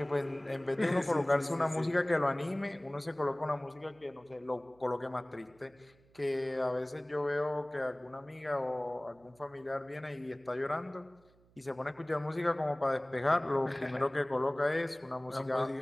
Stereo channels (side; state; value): right; noise; hum, 30 dB below the sound